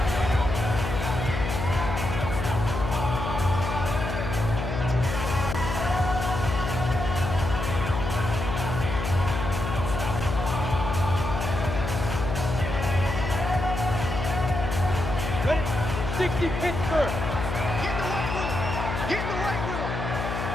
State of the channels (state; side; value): noise; left; hum, 4 dB below the sound